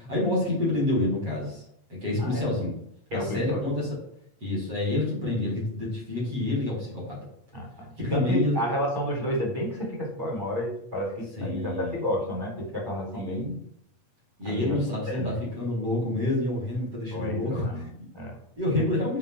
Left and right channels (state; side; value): late; left; 8.5 ms